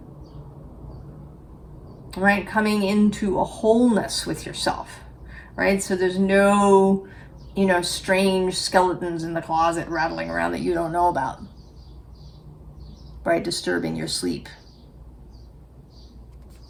right? Coming into a wholeness with yourself, right? So there's no, you know, strange skeletons in the closet rattling around that you don't know about, right? Disturbing your sleep.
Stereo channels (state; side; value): identical; both; correlation 1.00